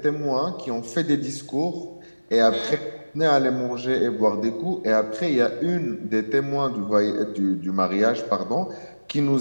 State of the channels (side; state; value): both; inverted; correlation -1.00